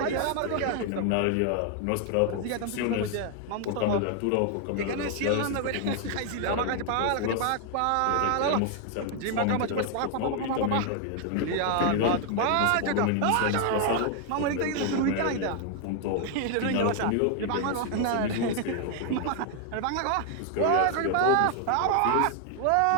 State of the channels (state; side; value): different; both; correlation 0.00